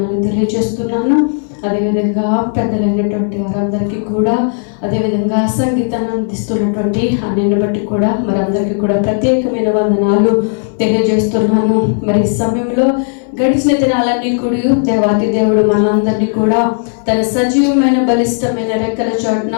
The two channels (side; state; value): right; silent; digital silence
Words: తెలియజేస్తున్నాను. అదేవిధంగా పెద్దలైనటువంటి వారందరికీ కూడా, అదేవిధంగా సంగీతాన్ని అందిస్తున్నటువంటి అన్నిని బట్టి కూడా మరి అందరికీ కూడా ప్రత్యేకమైన వందనాలు తెలియజేస్తున్నాను. మరి ఈ సమయంలో గడిచిన దినాలన్నీ కూడా దేవాతి దేవుడు మనందరినీ కూడా తన సజీవమైన బలిష్టమైన రెక్కల చోటున